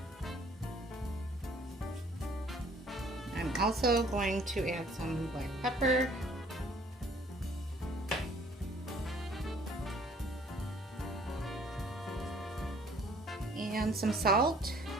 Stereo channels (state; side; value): normal; both; correlation 0.57